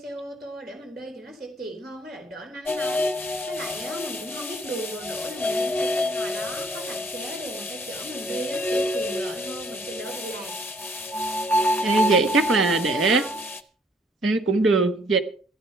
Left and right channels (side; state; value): both; normal; correlation 0.63